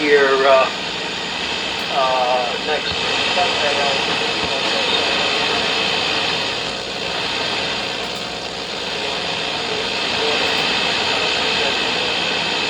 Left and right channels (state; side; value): identical; both; correlation 1.00